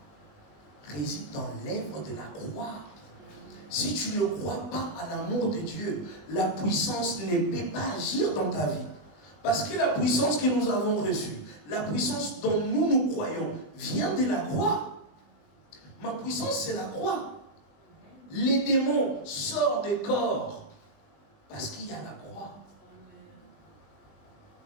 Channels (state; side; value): late; right; 20 ms